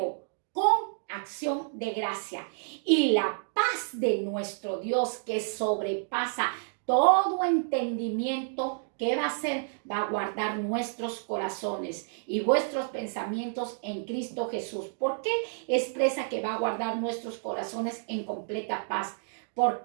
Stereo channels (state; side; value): silent; left; digital silence